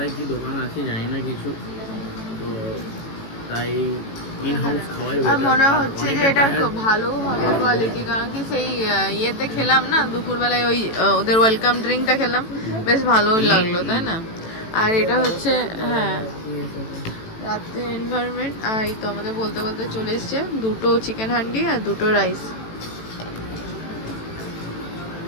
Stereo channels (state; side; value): late; right; 18 ms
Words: কি দোকান আছে জানি না কিছু, তো তাই ইন হাউস খাওয়াই বেটার। মনে হচ্ছে যে এটা ভালো হবে কোয়ালিটি, কারণ কি সেই ইয়েতে খেলাম না দুপুরবেলায়, ওই ওদের ওয়েলকাম ড্রিঙ্কটা খেলাম, বেশ ভালোই লাগলো তাই না। আর এটা হচ্ছে হ্যাঁ রাতে এনভায়রনমেন্ট। আর এই তো আমাদের বলতে বলতে চলে এসছে 2টো চিকেন হান্ডি আর 2টো রাইস।